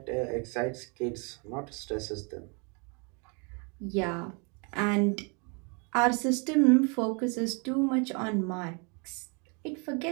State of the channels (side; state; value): left; quieter; 34.3 dB